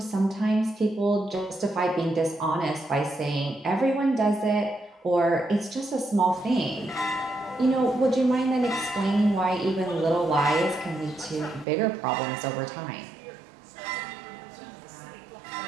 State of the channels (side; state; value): left; drops out; at 11.7 s